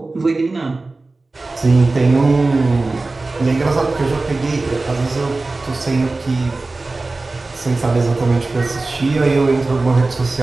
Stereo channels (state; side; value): quieter; left; 3.4 dB